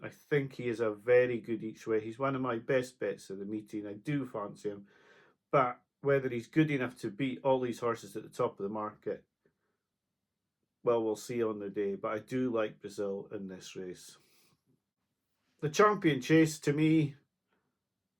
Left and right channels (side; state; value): both; identical; correlation 1.00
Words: I think he is a very good each way. He's one of my best bets of the meeting. I do fancy him. But whether he's good enough to beat all these horses at the top of the market, well, we'll see on the day. But I do like Brazil in this race. The Champion Chase, to me,